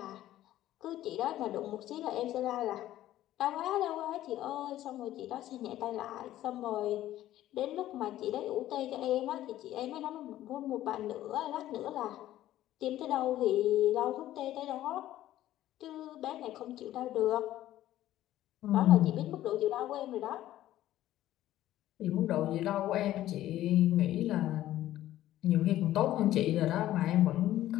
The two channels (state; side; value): quieter; right; 13.7 dB